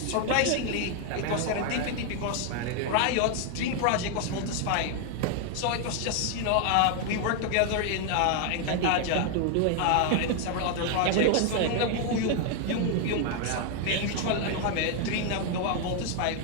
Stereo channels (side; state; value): both; different; correlation 0.01